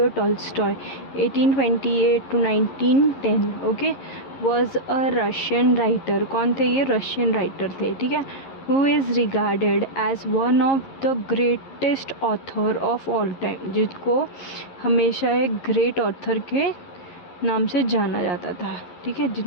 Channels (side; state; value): right; late; 11 ms